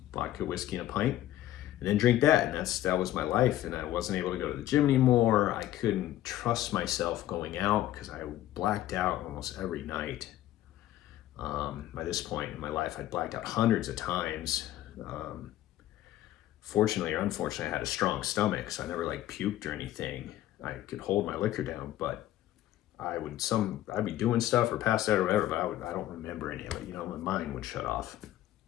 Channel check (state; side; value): quieter; right; 13.6 dB